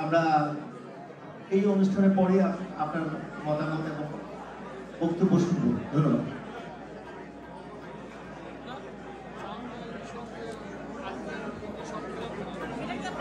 আমরা এই অনুষ্ঠানের পরে আপনার মতামত এবং বক্তব্য শুনব। ধন্যবাদ।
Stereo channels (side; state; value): both; identical; correlation 1.00